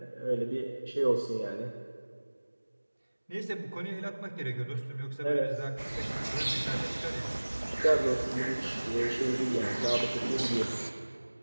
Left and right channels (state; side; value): inverted; both; correlation -1.00